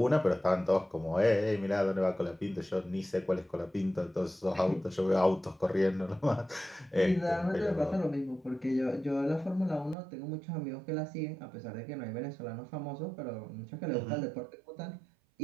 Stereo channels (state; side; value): drops out; left; at 10.0 s